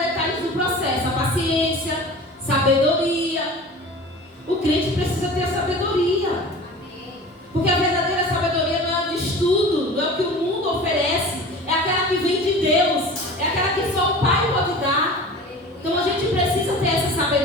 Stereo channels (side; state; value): both; normal; correlation 0.38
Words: do processo. A paciência, sabedoria. O crente precisa ter a sabedoria. Porque a verdadeira sabedoria não é de estudo, não é o que o mundo oferece. É aquela que vem de Deus. É aquela que só o Pai pode dar. Então a gente precisa ter essa